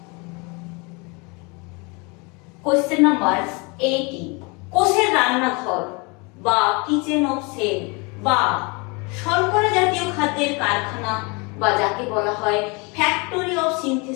কোশ্চেন নাম্বার 18, কোষের রান্নাঘর বা কিচেন অফ সেল বা শর্করা জাতীয় খাদ্যের কারখানা বা যাকে বলা হয় factory of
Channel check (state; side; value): quieter; right; 29.6 dB